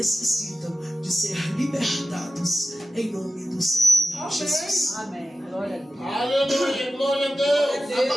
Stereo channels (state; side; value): normal; both; correlation 0.93